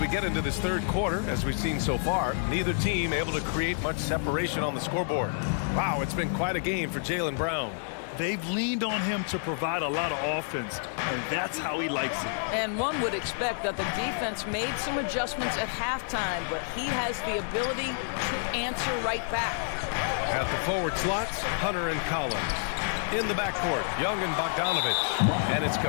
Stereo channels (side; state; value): right; silent; 59 dB below the other